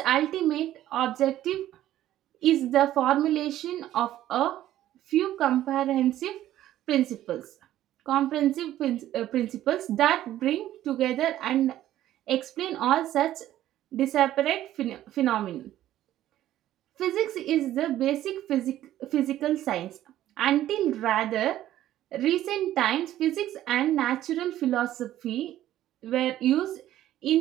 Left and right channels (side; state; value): left; quieter; 13.2 dB